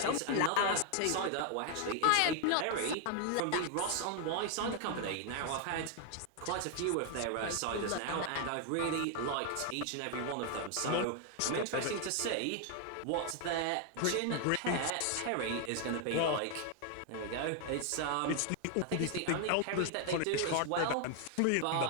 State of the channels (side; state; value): both; different; correlation 0.00